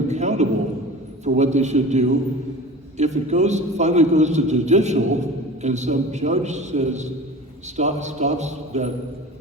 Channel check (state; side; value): normal; both; correlation 0.37